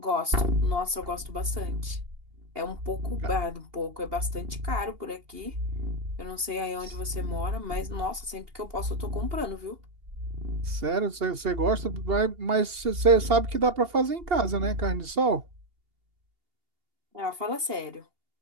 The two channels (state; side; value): late; left; 2.8 ms